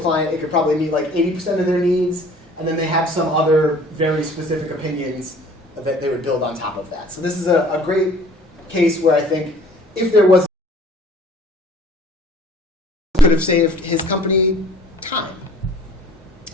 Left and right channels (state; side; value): normal; both; correlation 0.51